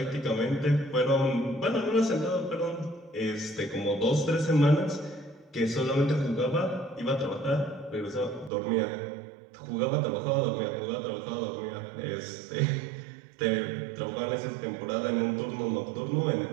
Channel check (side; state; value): left; drops out; at 8.5 s